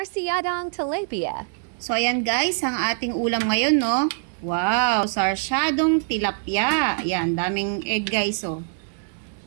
tilapia. So, ayan guys, ang ating ulam ngayon, no? Wow, sarsyadong tilapia. Ayan, daming egg guys, oh.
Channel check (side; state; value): left; silent; digital silence